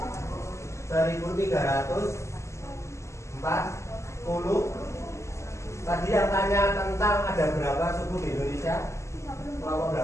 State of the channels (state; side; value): late; right; 0.14 ms